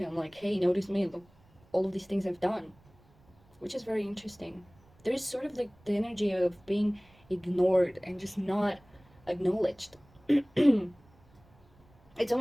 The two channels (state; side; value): noise; right; rumble, 29 dB below the sound